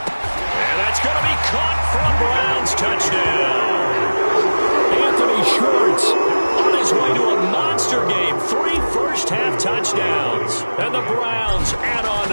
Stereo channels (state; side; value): inverted; both; correlation -1.00